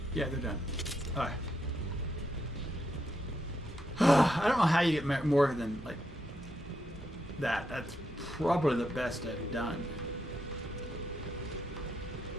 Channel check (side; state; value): both; normal; correlation 0.80